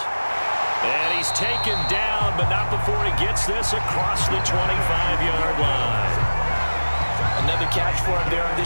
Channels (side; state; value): both; inverted; correlation -1.00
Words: And he's taken down, but not before he gets this across the 25-yard line. Another catch for him there on